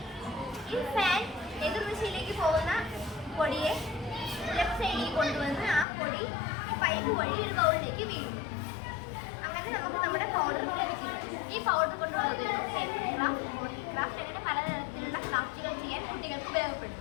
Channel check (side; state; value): right; drops out; at 5.9 s